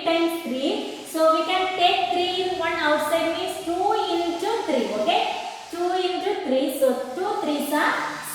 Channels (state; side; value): identical; both; correlation 1.00